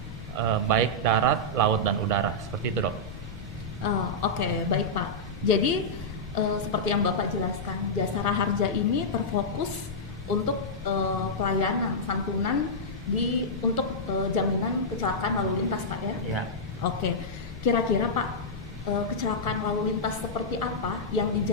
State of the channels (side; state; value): left; noise; rumble, 13 dB below the sound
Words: baik darat, laut dan udara, seperti itu dok. Oke, baik Pak. Jadi seperti yang Bapak jelaskan, Jasara Harja ini terfokus untuk pelayanan santunan untuk jaminan kecelakaan lalu lintas Pak ya? Iya. Oke, kira-kira Pak, kecelakaan lalu lintas seperti apa yang